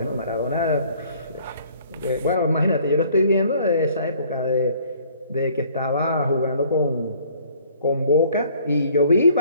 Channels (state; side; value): inverted; both; correlation -0.57